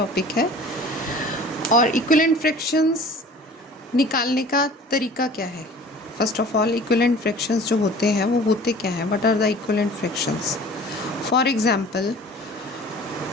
है। और इक्विवेलेंट फ्रैक्शंस निकालने का तरीका क्या है? First of all, equivalent fractions जो होते हैं वो होते क्या हैं? What are the equivalent fractions? For example,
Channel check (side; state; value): both; normal; correlation 0.45